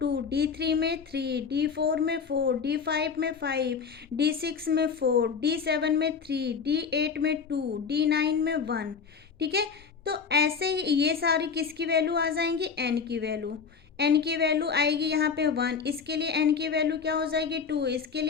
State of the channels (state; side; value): quieter; right; 5.9 dB